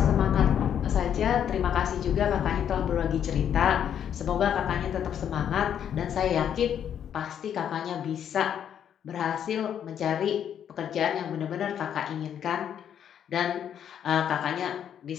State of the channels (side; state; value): right; quieter; 9.2 dB